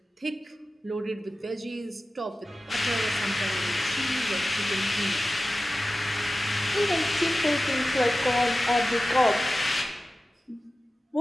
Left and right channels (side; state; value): both; normal; correlation 0.95